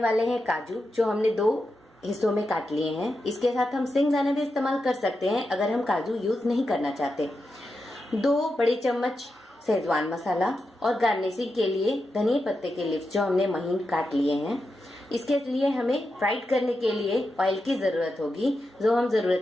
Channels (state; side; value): normal; both; correlation 0.88